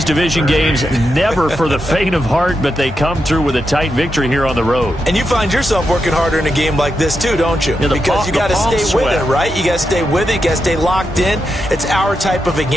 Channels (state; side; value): normal; both; correlation 0.86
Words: division games, never for the faint of heart, but they come through with a tight victory here on the road. And you find yourself working harder in a game like this too, don't you? Yeah, because you got to stay sweat. with it, right? You got to stay with it. You got to stay locked in. It's our type of a